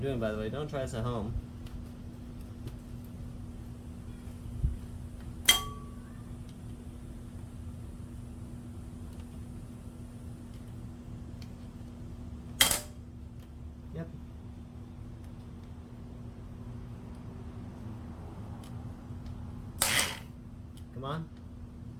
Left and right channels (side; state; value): both; identical; correlation 1.00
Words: doing, by the way. Don't try this at home. Yep. Come on.